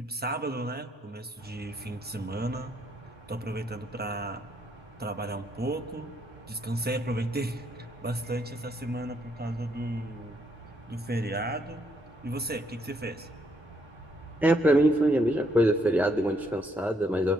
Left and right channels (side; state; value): both; normal; correlation 0.72